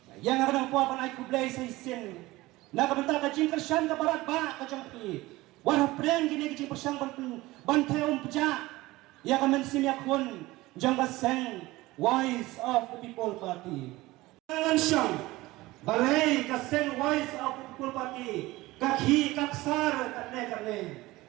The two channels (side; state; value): left; quieter; 19.3 dB